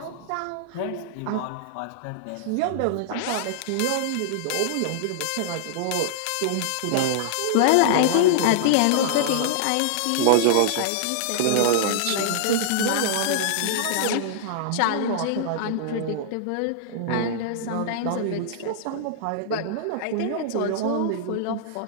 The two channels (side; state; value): both; different; correlation -0.01